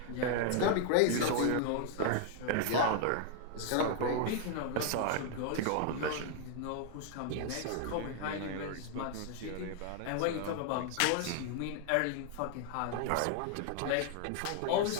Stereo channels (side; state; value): both; different; correlation 0.00